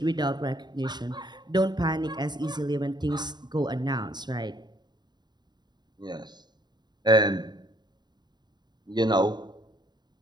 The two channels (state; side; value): late; left; 0.21 ms